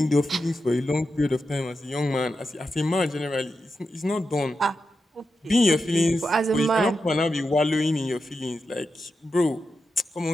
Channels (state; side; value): normal; both; correlation 0.89